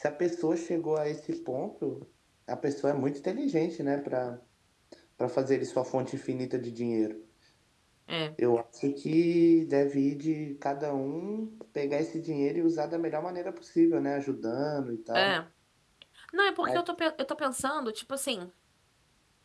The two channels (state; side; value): identical; both; correlation 1.00